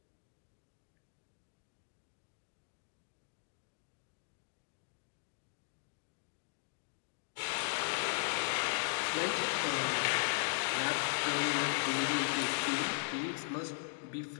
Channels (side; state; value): right; silent; digital silence